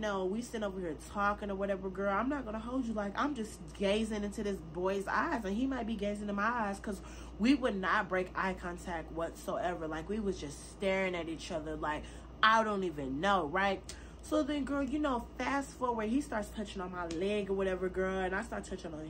we sit over here talking or whatever, girl. I'm not going to hold you. Like, I'm just gazing into this boy's eyes, and he might be gazing in my eyes, because we would not break eye contact whatsoever. Like, we was just staring at each other like, I don't even know, right? So then, girl, you know, fast forward, he starts touching on my leg or whatever, girl, and I start touching on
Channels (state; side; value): identical; both; correlation 1.00